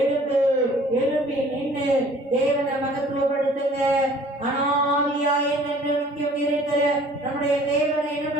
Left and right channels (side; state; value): both; normal; correlation 0.52